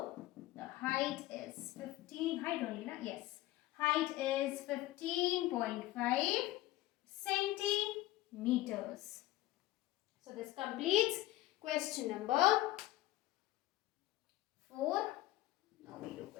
the height is 15. Height only, na? Yes. Height is 15.5 centimeters. So this completes question number 4. Now we do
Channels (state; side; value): quieter; right; 16.5 dB